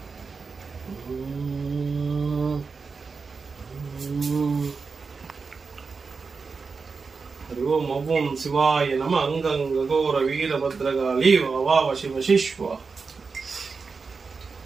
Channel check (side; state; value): left; quieter; 4.7 dB